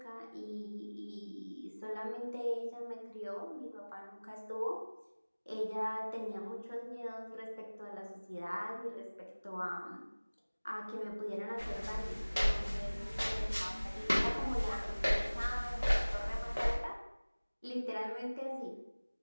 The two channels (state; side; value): inverted; both; correlation -1.00